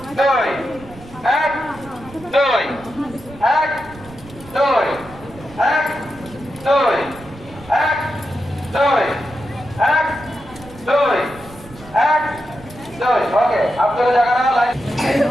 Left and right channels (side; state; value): right; noise; rumble, 19 dB below the sound